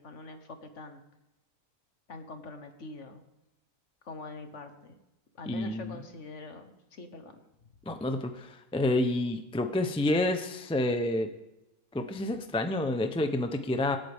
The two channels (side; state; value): both; normal; correlation 0.59